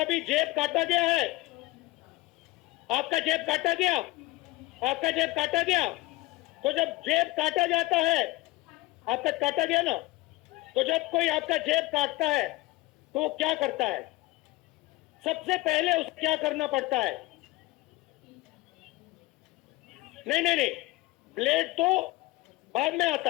जेब काटा गया है? आपका जेब काटा गया? आपका जेब काटा गया? तो जब जेब काटा जाता है, आपका काटा गया ना, तो जब कोई आपका जेब काटता है तो वो क्या करता है? सबसे पहले उसे क्या करना पड़ता है? नहीं नहीं नहीं, ब्लेड तो बाद में आता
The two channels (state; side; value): quieter; right; 19.5 dB